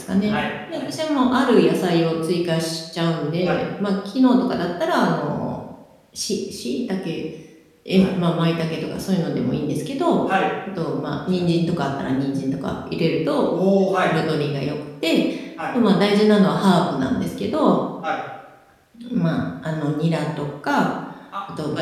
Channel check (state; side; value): identical; both; correlation 1.00